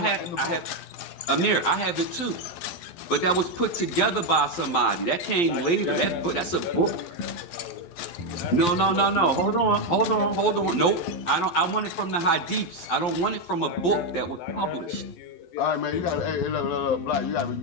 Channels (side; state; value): right; late; 12 ms